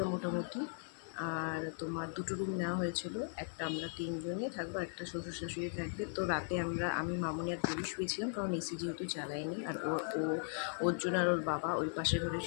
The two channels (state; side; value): silent; right; 52 dB below the other